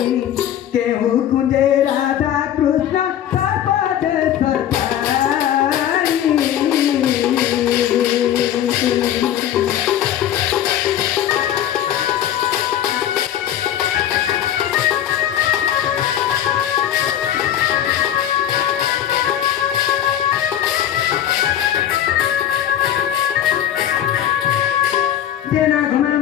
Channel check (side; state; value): right; quieter; 10.7 dB